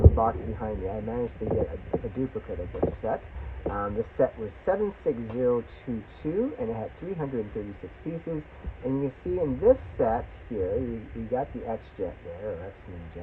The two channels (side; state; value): both; identical; correlation 1.00